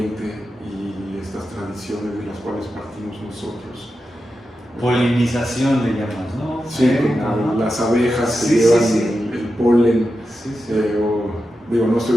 y estas tradiciones de las cuales partimos nosotros. Polinización le llamas, ¿no? Sí, como las abejas que llevan el polen, digo, no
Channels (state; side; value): normal; both; correlation 0.90